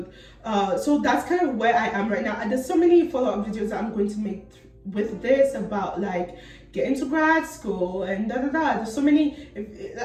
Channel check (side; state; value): both; identical; correlation 1.00